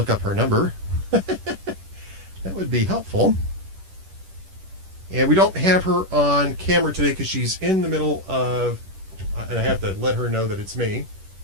up her number. That would be helpful. And we don't have her on camera today because she's in the middle of, and I have to let her know that it's me.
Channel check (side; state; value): left; late; 10 ms